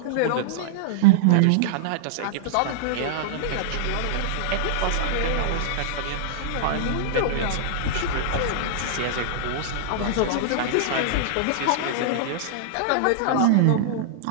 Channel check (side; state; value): both; different; correlation -0.01